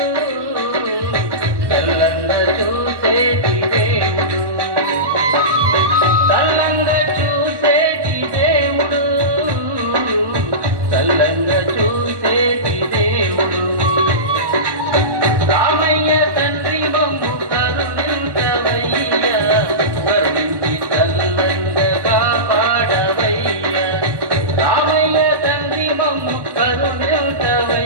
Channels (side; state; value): left; late; 1.1 ms